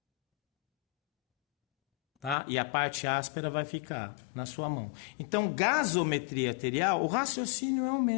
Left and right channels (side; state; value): right; drops out; at 2.4 s